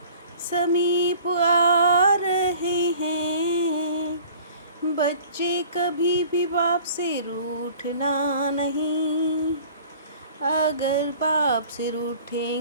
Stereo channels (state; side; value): inverted; both; correlation -0.47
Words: समीप आ रहे हैं। बच्चे कभी भी बाप से रूठना नहीं। अगर बाप से